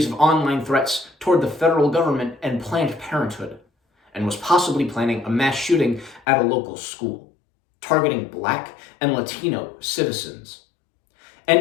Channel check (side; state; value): right; drops out; at 6.2 s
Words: of online threats toward the federal government and Planned Parenthood, and was possibly planning a mass shooting at a local school, targeting Black and Latino citizens.